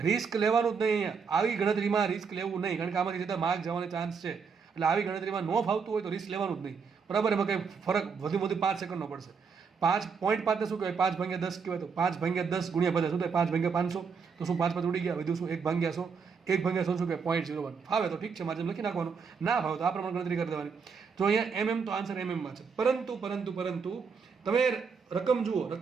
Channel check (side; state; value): left; quieter; 5.7 dB